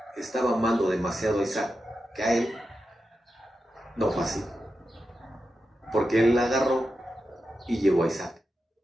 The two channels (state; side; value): normal; both; correlation 0.89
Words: estaba amando demasiado a Isaac, que a él, no fue así. Porque él la agarró y llevó a Isaac